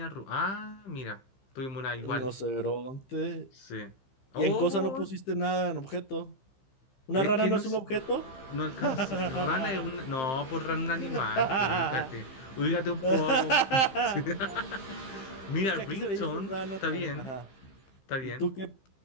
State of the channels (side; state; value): right; late; 15 ms